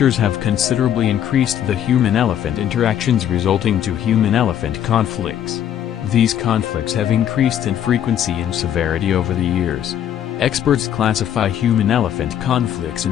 have considerably increased the human-elephant interactions resulting to human-elephant conflicts. These conflicts have increased in frequency and severity over the years. Experts classify human-elephant conflicts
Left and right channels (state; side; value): quieter; right; 10.2 dB